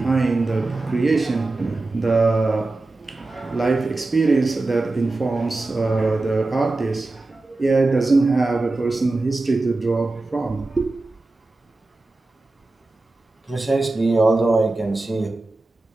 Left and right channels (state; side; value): quieter; left; 3.1 dB